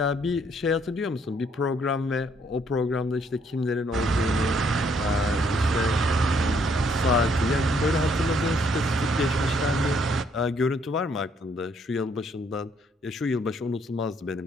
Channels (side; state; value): both; normal; correlation 0.68